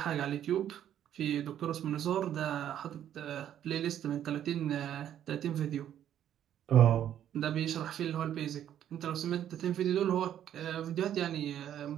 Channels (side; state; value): left; quieter; 10.6 dB